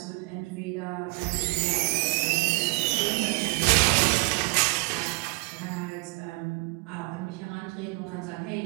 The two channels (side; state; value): left; quieter; 30.7 dB